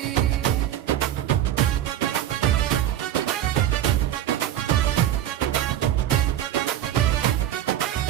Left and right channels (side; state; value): left; quieter; 11.8 dB